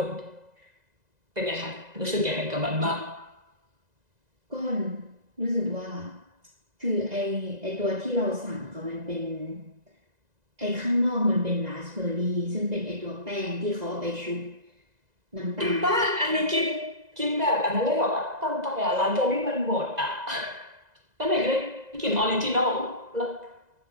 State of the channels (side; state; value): left; late; 2.0 ms